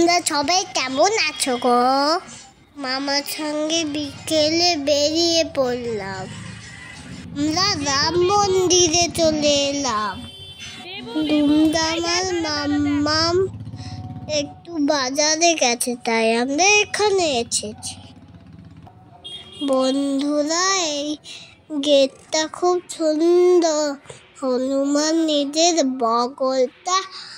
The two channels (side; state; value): both; identical; correlation 1.00